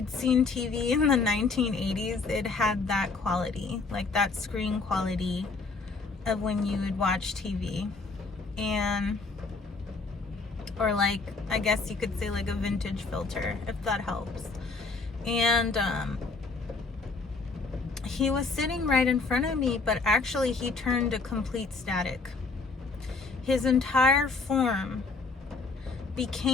seen TV in the 1980s, it had that quality, like that screen quality of when you would watch TV. And, or like, I guess you could say like a vintage filter, if that helps. And he was sitting right in front of me, but actually he turned to complete static. His entire form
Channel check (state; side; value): quieter; right; 4.1 dB